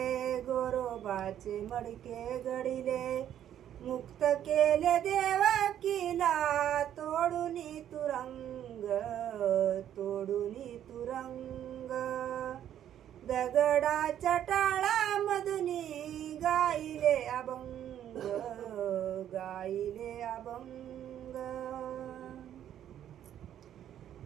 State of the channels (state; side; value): quieter; left; 10.6 dB